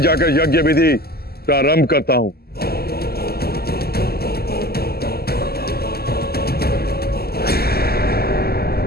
यज्ञ विधि प्रारंभ करता हूं।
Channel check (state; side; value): late; right; 0.46 ms